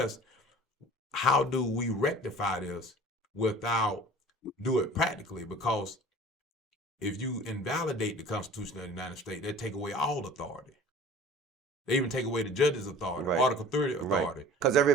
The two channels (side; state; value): both; normal; correlation 0.44